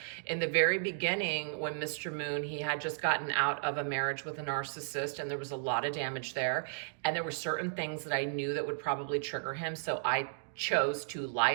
in the very beginning, when Mr. Moon, he had just gotten out of a marriage with a narcissist, and there was a lot of damage there. And there were certain things that I knew that would probably trigger him. So I chose to lie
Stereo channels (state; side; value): silent; left; digital silence